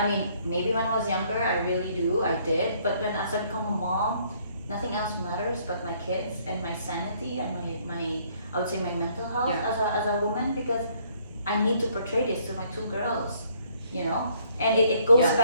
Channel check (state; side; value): inverted; both; correlation -0.65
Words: mean, maybe when I was younger, I really did. But as I become a mom, nothing else matters but my kids and my sanity and my I would say my mental health as a woman, because I need to portray this to my 2 girls, you know. And it goes